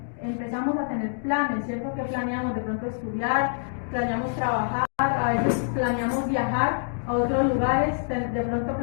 empezamos a tener planes, ¿cierto? Que planeamos de pronto estudiar, planeamos trabajar, a veces planeamos viajar a otros lugares, de pronto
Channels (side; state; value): right; silent; digital silence